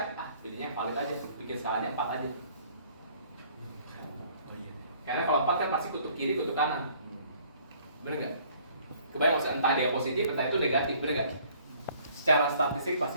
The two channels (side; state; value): both; inverted; correlation -0.58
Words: pilihnya yang valid aja, bikin skalanya 4 aja. Karena kalau 4 kan pasti kutub kiri, kutub kanan. Bener nggak? Kebayang maksudnya entah dia positif, entah itu negatif, bener nggak? Secara statistik pasti